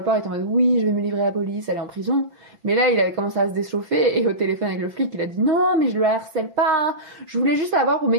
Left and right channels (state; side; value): late; left; 5.9 ms